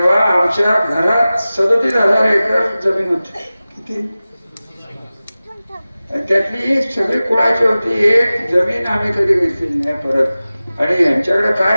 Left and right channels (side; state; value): both; inverted; correlation -0.96